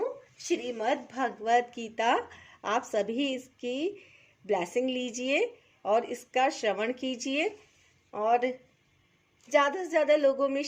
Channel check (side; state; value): both; identical; correlation 1.00